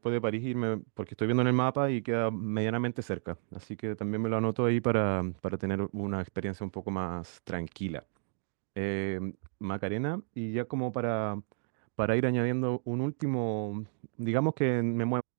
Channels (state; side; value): silent; left; digital silence